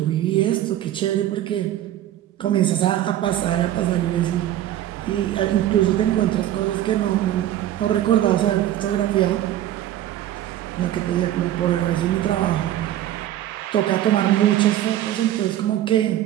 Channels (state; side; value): quieter; left; 12.7 dB